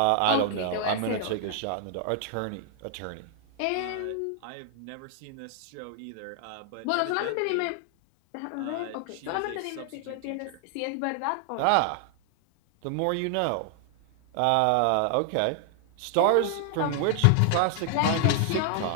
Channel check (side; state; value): both; different; correlation 0.00